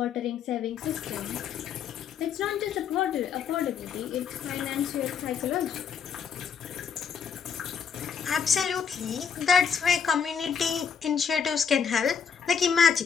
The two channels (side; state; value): right; quieter; 6.8 dB